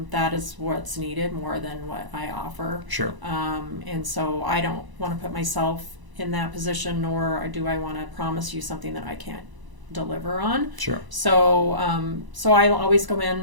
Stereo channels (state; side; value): late; left; 1.0 ms